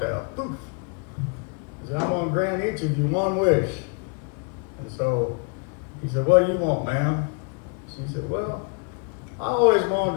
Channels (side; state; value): right; quieter; 37.2 dB